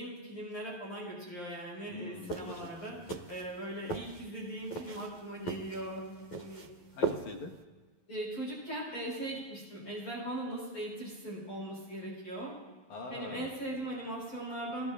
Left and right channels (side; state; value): right; late; 11 ms